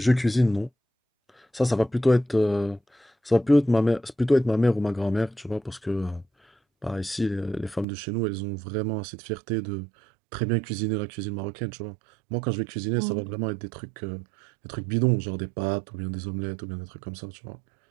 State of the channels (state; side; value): drops out; left; at 7.9 s